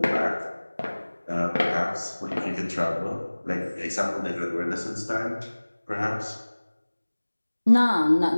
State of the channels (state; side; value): inverted; both; correlation -1.00